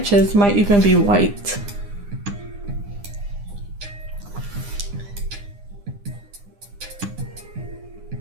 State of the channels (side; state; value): left; late; 9.9 ms